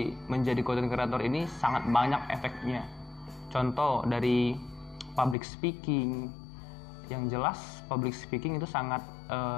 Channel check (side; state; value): right; drops out; at 5.4 s